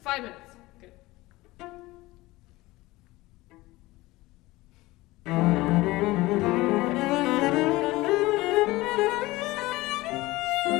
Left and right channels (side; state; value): right; quieter; 19.7 dB